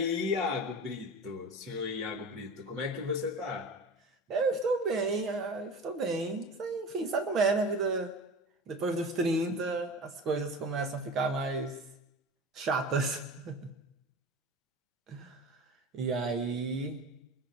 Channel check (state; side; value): normal; both; correlation 0.33